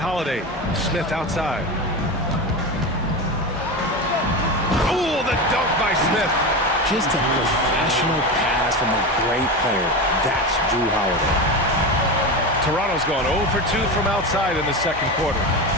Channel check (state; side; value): normal; both; correlation 0.22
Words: Smith outside. Oh, the dunk by Smith. Just a professional pass from a great player. That's Drew Holiday. Toronto's gone 0 for 2 from outside in the second quarter.